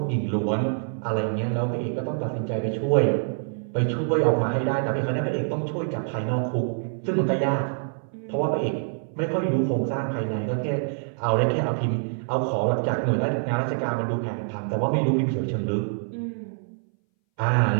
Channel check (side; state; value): left; silent; 60 dB below the other